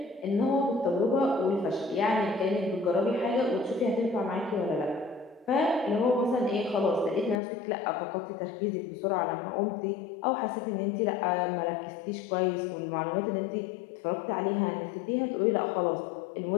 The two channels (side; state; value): right; drops out; at 7.4 s